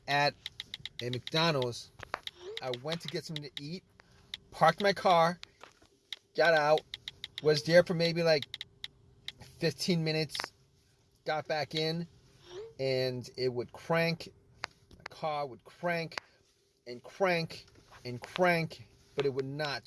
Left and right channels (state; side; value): identical; both; correlation 1.00